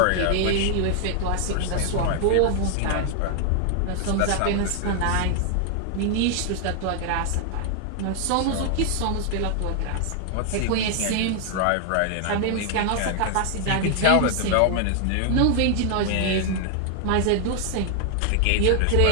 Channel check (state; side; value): different; both; correlation 0.00